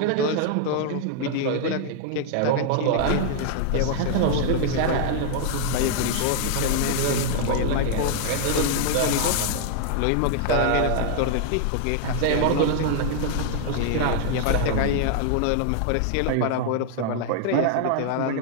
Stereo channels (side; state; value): both; different; correlation 0.00